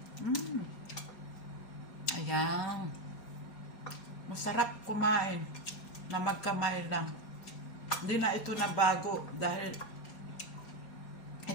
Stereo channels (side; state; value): right; late; 4.2 ms